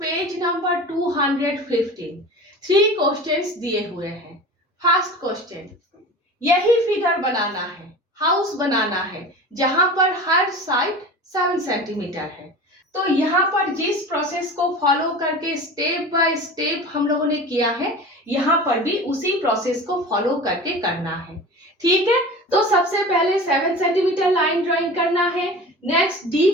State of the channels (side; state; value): both; normal; correlation 0.35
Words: नंबर 215। 3 क्वेश्चंस दिए हुए हैं। फर्स्ट क्वेश्चन, यही फिगर बनाना है, हाउस बनाना है जहां पर हर साइड 7 सेंटीमीटर है। तो यहाँ पर जिस प्रोसेस को फॉलो करके स्टेप बाय स्टेप हम लोगों ने किया है, यहाँ पर भी उसी प्रोसेस को फॉलो करके करना है। ठीक है, तो सबसे पहले 7 सेंटीमीटर लाइन ड्राइंग करना है। नेक्स्ट डी